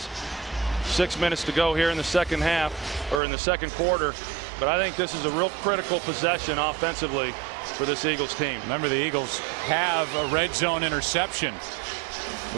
6 minutes to go here in the second half, or in the second quarter. But I think this is a real critical possession offensively for this Eagles team. Remember, the Eagles have a red zone interception,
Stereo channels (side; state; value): left; drops out; at 3.2 s